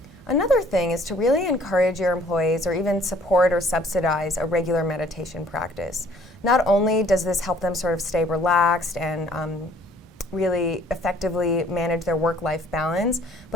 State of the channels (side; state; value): both; normal; correlation 0.58